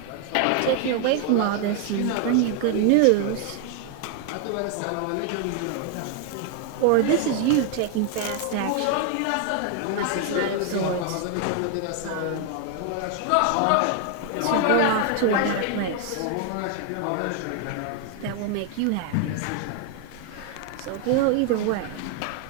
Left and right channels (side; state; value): both; different; correlation 0.00